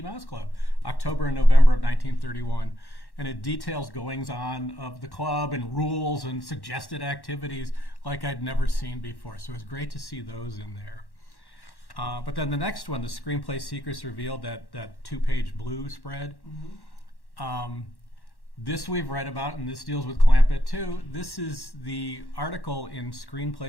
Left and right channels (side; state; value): right; late; 1.1 ms